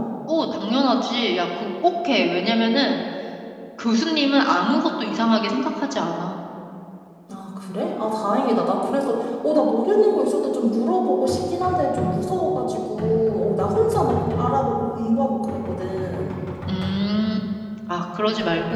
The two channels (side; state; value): both; identical; correlation 1.00